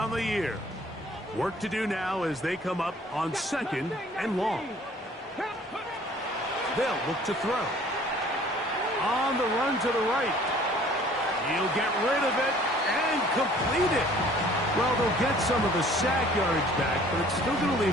the year. Work to do now as they come up on 2nd and long. They'll look to throw. On the run to the right. He'll get rid of it and complete it. Well, they'll get some of the sack yardage back, but it's still going to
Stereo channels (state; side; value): normal; both; correlation 0.54